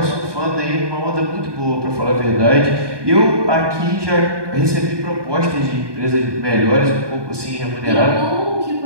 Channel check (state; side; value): late; left; 1.2 ms